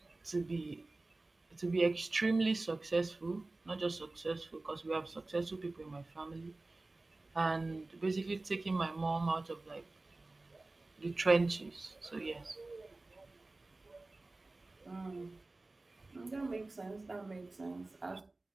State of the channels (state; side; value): quieter; left; 3.1 dB